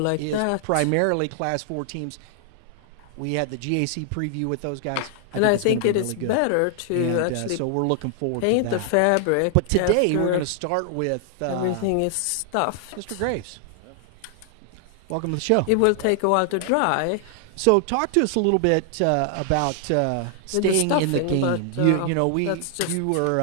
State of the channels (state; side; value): different; both; correlation 0.00